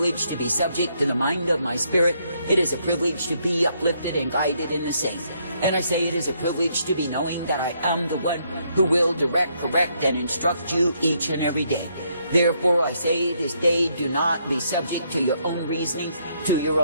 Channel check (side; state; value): both; inverted; correlation -0.73